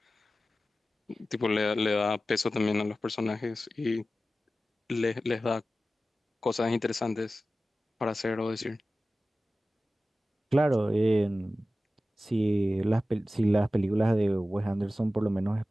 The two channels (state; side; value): normal; both; correlation 0.95